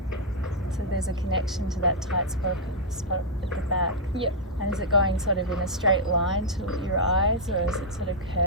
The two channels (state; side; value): normal; both; correlation -0.06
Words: So there's a connection to that tight spot at the back. Yep. And is it going sort of in a straight line to your eyes, or is it sort of